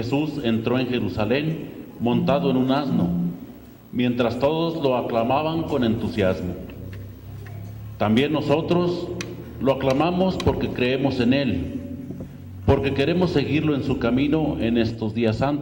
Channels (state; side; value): identical; both; correlation 1.00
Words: entró en Jerusalén montado en un asno, mientras todos lo aclamaban con entusiasmo. También nosotros lo aclamamos porque creemos en Él, porque queremos seguirlo en su camino en estos días santos,